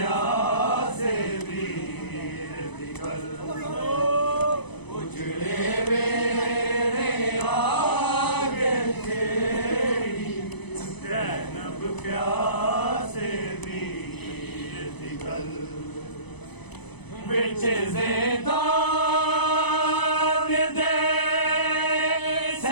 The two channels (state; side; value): late; right; 0.99 ms